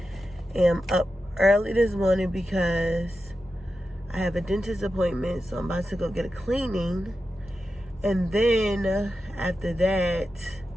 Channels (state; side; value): normal; both; correlation 0.91